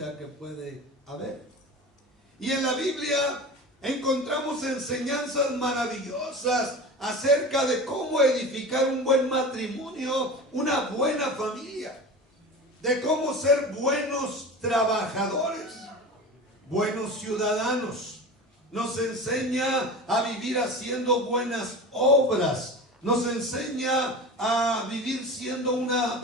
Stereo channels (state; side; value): normal; both; correlation 0.32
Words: que puede haber. Y en la Biblia encontramos enseñanzas maravillosas acerca de cómo edificar un buen matrimonio, una buena familia, de cómo ser buenos trabajadores, buenos ciudadanos. Nos enseña a vivir haciendo buenas obras. Nos enseña a vivir siendo una